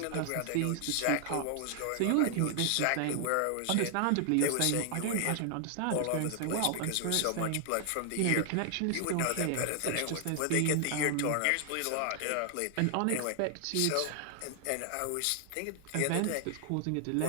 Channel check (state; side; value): different; both; correlation 0.00